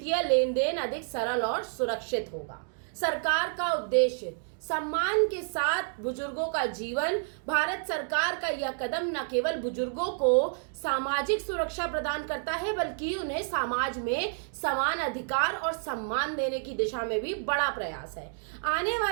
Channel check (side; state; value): left; silent; 58 dB below the other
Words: लेन देन अधिक सरल और सुरक्षित होगा। सरकार का उद्देश्य: सम्मान के साथ बुजुर्गों का जीवन। भारत सरकार का यह कदम न केवल बुजुर्गों को सामाजिक सुरक्षा प्रदान करता है, बल्कि उन्हें समाज में समान अधिकार और सम्मान देने की दिशा में भी बड़ा प्रयास है। आने